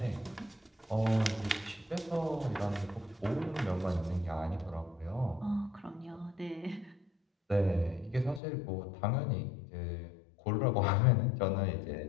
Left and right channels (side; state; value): right; drops out; at 8.4 s